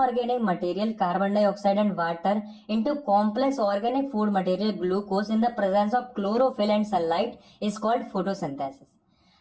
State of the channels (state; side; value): identical; both; correlation 1.00